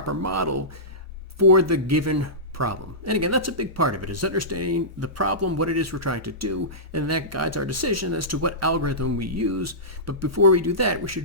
model for the given problem. And again, that's a big part of it, is understanding the problem, what it is we're trying to do, and that guides our decision as to what algorithm we use. But before we do that, we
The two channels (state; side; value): normal; both; correlation -0.19